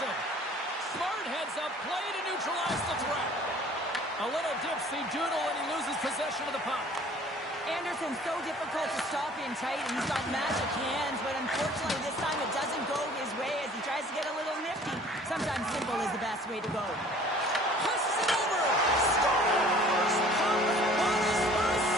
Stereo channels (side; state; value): both; normal; correlation 0.51